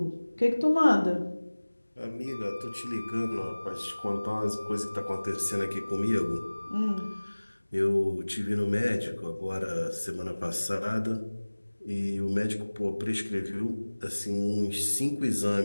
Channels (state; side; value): inverted; both; correlation -1.00